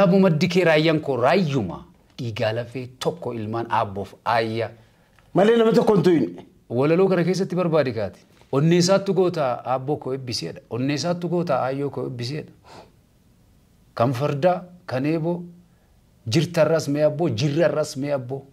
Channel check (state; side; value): identical; both; correlation 1.00